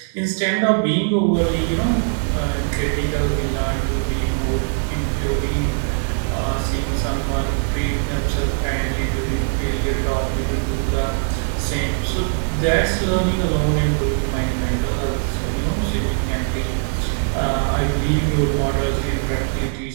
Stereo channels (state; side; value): silent; left; 62 dB below the other